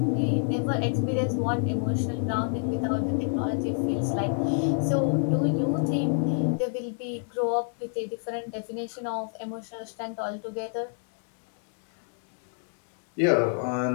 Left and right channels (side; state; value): right; silent; 59 dB below the other